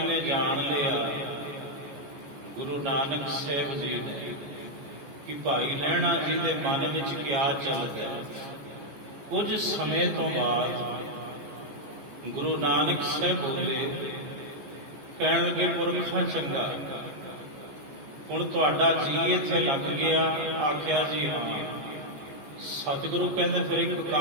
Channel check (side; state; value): left; late; 14 ms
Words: ਨੇ ਜਾਣ ਲਿਆ ਗੁਰੂ ਨਾਨਕ ਸਾਹਿਬ ਜੀ ਨੇ ਕਿ ਭਾਈ ਲਹਿਣਾ ਜੀ ਦੇ ਮਨ ਵਿੱਚ ਕਿਆ ਚੱਲਦਾ ਹੈ। ਕੁਝ ਸਮੇਂ ਤੋਂ ਬਾਅਦ ਗੁਰੂ ਨਾਨਕ ਸਾਹਿਬ ਬੋਲੇ, ਕਹਿਣ ਲੱਗੇ ਪੁਰਖਾ ਚੰਗਾ, ਹੁਣ ਤੁਹਾਡਾ ਜੀ ਇੱਥੇ ਲੱਗ ਗਿਆ। ਆਖਿਆ ਜੀ ਹਾਂ। ਸਤਿਗੁਰੂ ਕਹਿੰਦੇ ਫਿਰ ਇੱਕ